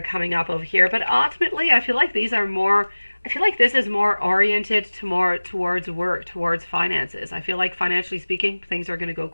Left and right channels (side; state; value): both; inverted; correlation -1.00